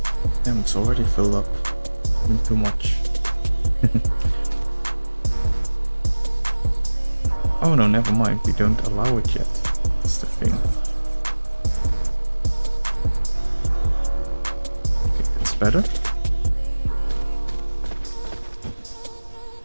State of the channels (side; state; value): both; inverted; correlation -1.00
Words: it's already filled up. Too much. Oh no, never mind. We don't allow it yet. That's the thing. Okay, that's better.